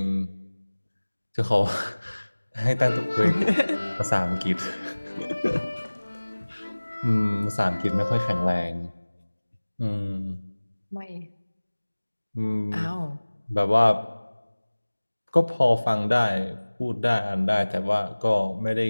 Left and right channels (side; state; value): both; inverted; correlation -1.00